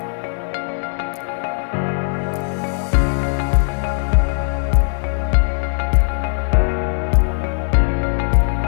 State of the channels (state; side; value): silent; right; digital silence